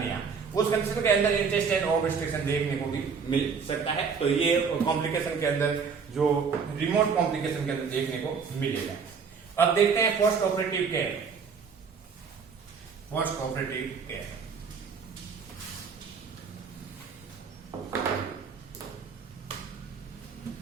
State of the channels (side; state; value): left; quieter; 5.8 dB